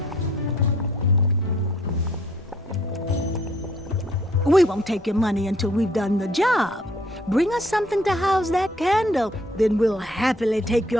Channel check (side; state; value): both; normal; correlation 0.61